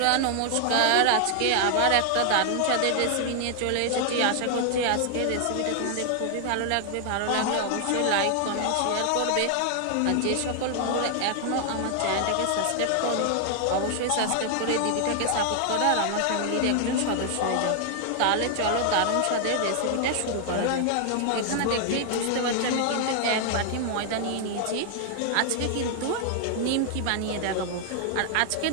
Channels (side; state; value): both; different; correlation 0.00